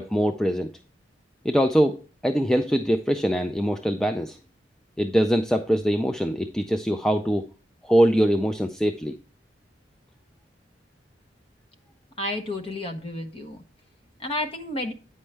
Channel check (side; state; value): both; normal; correlation 0.90